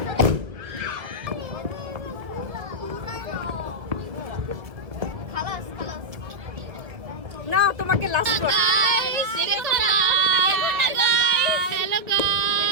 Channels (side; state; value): left; late; 1.6 ms